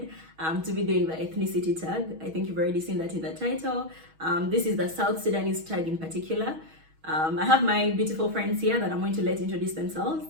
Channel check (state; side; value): late; left; 6.3 ms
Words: to be doing the ethnicity tag. I think you've already seen that in the title. This is the South Sudanese tag in particular. I have my beautiful friends here that I'm going to let introduce themselves.